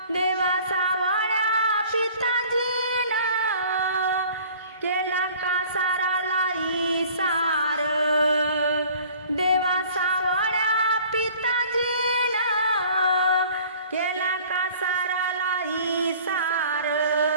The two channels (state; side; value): inverted; both; correlation -0.50